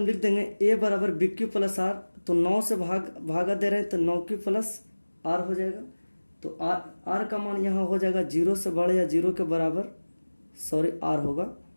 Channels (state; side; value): inverted; both; correlation -1.00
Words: लिख देंगे a बराबर bq प्लस r, तो 9 से भागा दे रहे हैं तो 9q प्लस r हो जाएगा। तो r का मान यहाँ हो जाएगा 0 से बड़ा या 0 के बराबर, सॉरी r होगा,